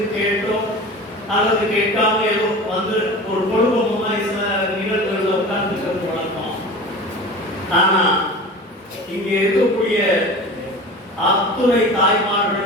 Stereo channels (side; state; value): both; normal; correlation 0.35